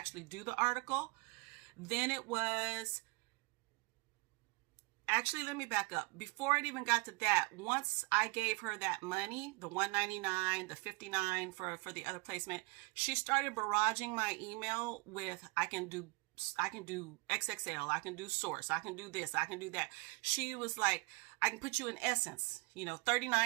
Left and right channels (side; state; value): left; quieter; 27.0 dB